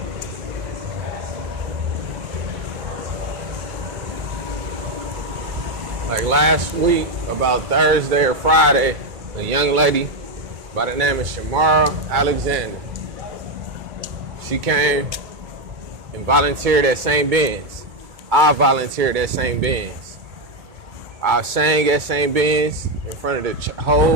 Like last week, about Thursday or Friday, a young lady by the name of Shamara Alexander, she came and volunteered at St. Ben's. I volunteered at St. Ben's. I sang at St. Ben's in front of the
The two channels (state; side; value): late; left; 2.2 ms